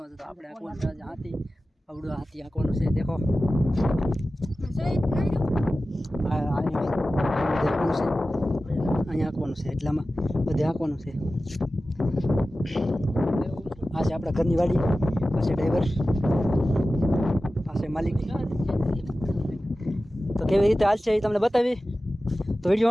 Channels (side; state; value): both; normal; correlation 0.95